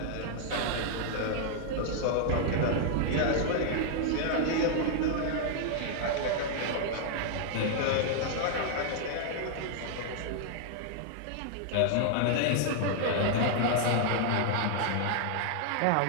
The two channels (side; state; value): both; different; correlation 0.00